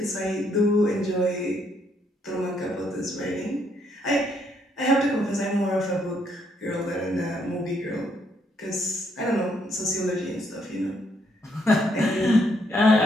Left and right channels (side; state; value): both; normal; correlation 0.72